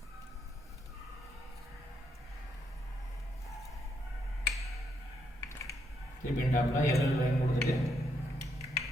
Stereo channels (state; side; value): normal; both; correlation 0.77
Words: திருப்பி டாப்பில் எல்எல் லைன் கொடுத்துட்டு